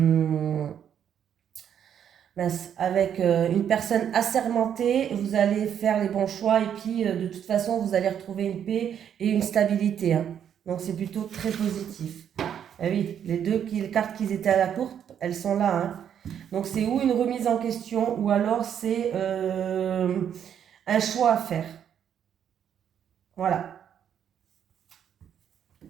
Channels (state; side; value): quieter; left; 9.0 dB